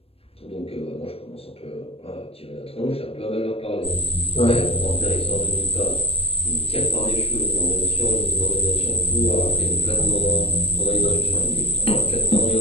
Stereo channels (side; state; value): right; late; 0.28 ms